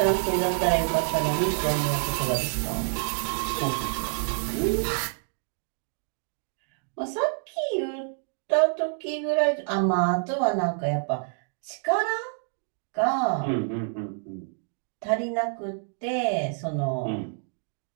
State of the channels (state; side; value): silent; left; 56 dB below the other